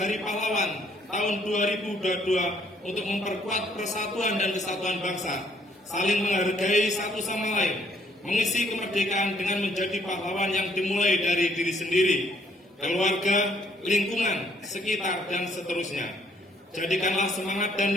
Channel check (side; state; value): both; normal; correlation 0.66